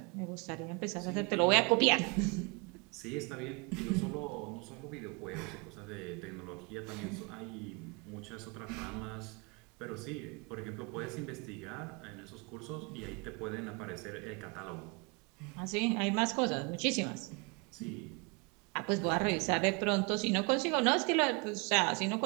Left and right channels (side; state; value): left; quieter; 30.6 dB